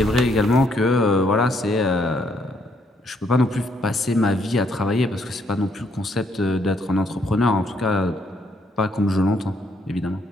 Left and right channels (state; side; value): normal; both; correlation 0.71